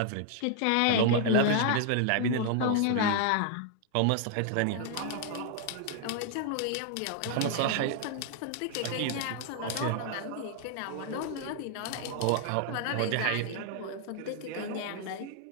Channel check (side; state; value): both; different; correlation 0.00